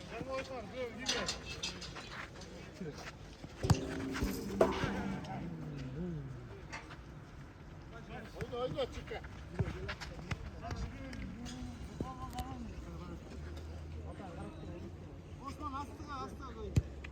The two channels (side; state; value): both; identical; correlation 1.00